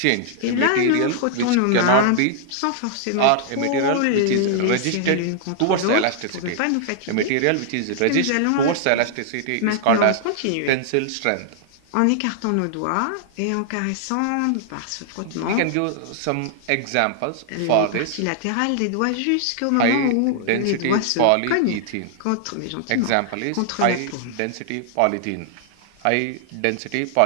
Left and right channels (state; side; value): different; both; correlation -0.01